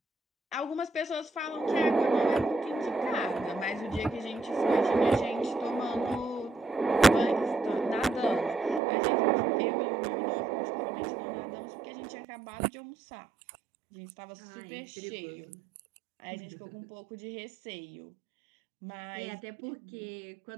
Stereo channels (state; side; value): drops out; left; at 8.8 s